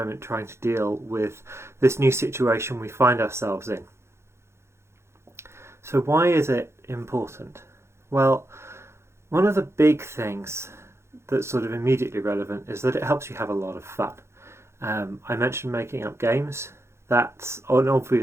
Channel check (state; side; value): late; left; 0.13 ms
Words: trying to deal with this new situation we find ourselves in. So why is it important? Well, one of the big things that's sort of immediately relevant is that it helps you have a lot of fun. I mentioned making up games. That's an